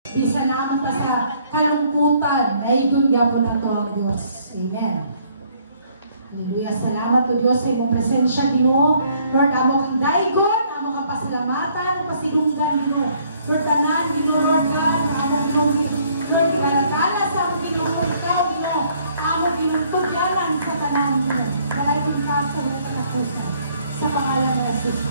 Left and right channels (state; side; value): inverted; both; correlation -0.64